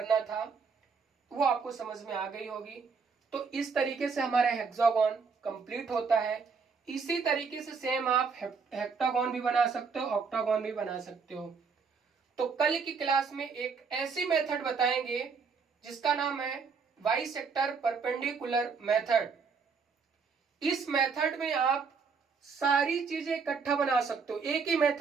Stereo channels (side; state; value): left; quieter; 5.3 dB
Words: था, वो आपको समझ में आ गई होगी। तो इस तरीके से हमारा हेक्सागोन कंप्लीट होता है। इसी तरीके से सेम आप हेक्टागोन भी बना सकते हो, ऑक्टागोन भी बना सकते हो। तो कल की क्लास में एक ऐसी मेथड बताएंगे जिसका नाम है बाइसेक्टर परपेंडिकुलर मेथड। इस मेथड में आप सारी चीजें इकट्ठा बना सकते हो, एक ही